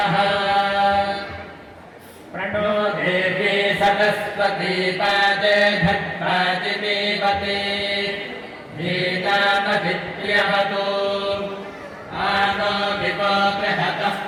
प्रणो देवी सरस्वती पादे भद्रादिदेवते वेदामभिद्यवतो आनो दिवो बृहतः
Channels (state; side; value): identical; both; correlation 1.00